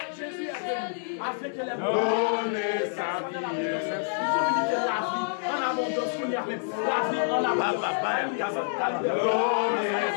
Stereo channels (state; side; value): silent; right; digital silence